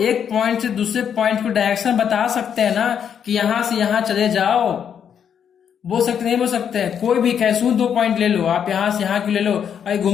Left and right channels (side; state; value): right; quieter; 8.2 dB